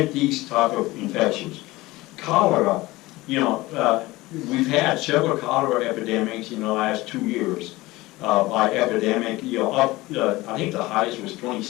these type of infections. Cholera, we've had several cholera epidemics in the last 2 years. by epidemic, I think the highest was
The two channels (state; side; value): quieter; right; 19.8 dB